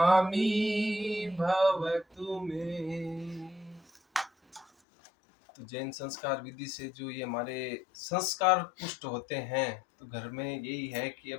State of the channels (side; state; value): right; drops out; at 4.7 s